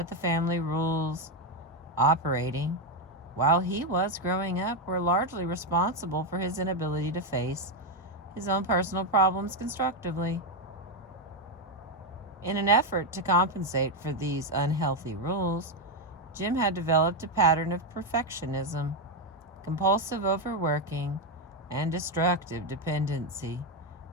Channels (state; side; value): normal; both; correlation 0.06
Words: the family rules operating while he was growing up were largely responsible for his inability to face his own personal problems constructively. In an effort to compensate for these unhealthy rules, Jim had developed a pattern of perfectionism, compulsive overworking, and destructive dependency